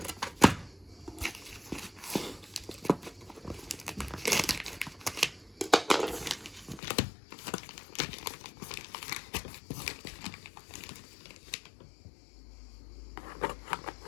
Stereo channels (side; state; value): right; drops out; at 6.8 s